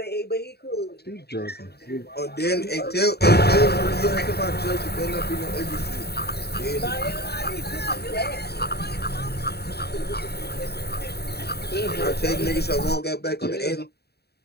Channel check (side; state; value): right; late; 0.47 ms